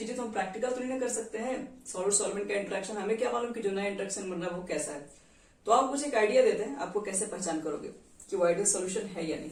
तो हम प्रैक्टिकल तो नहीं कर सकते हैं। सॉल्वेंट का इंट्रैक्शन हमें क्या मालूम कि जो नया इंट्रैक्शन बन रहा है वो कैसा है। तो आप मुझे एक आइडिया देते हैं, आपको कैसे पहचान करोगे कि वो आइडियल सॉल्यूशन है या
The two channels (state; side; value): identical; both; correlation 1.00